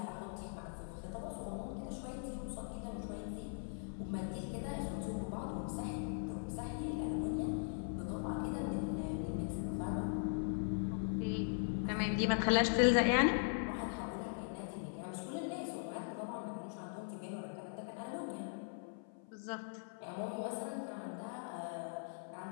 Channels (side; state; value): right; silent; 51 dB below the other